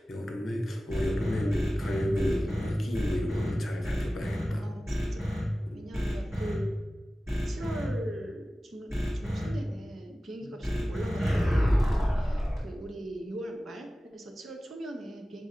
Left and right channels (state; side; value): normal; both; correlation 0.96